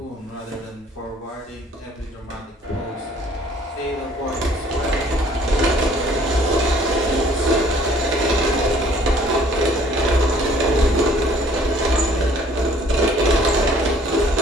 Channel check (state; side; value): normal; both; correlation 0.57